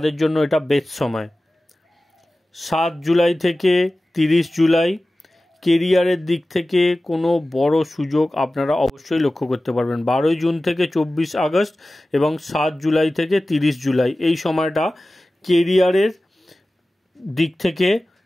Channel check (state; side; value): normal; both; correlation 0.96